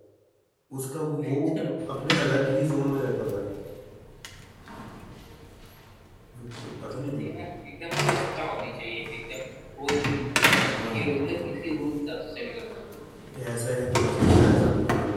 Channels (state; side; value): identical; both; correlation 1.00